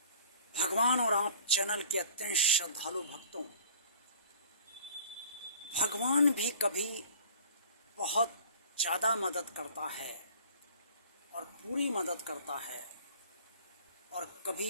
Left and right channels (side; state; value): both; inverted; correlation -0.49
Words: भगवान और आप चैनल के अत्यंत श्रद्धालु भक्तों, भगवान भी कभी बहुत ज़्यादा मदद करता है और पूरी मदद करता है और